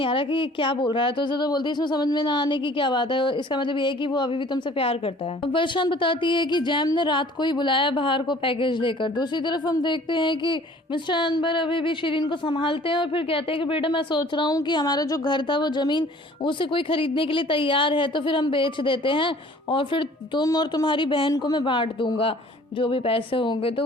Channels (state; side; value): normal; both; correlation 0.51